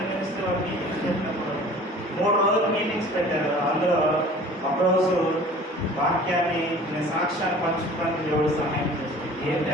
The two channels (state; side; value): normal; both; correlation 0.46